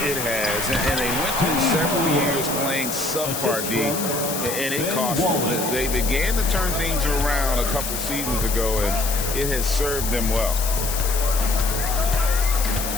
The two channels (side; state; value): left; noise; hiss, 4 dB below the sound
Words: It has, and they went through several years playing subpar D, and it cost them. They began to turn things around a couple seasons ago, and it has served them well.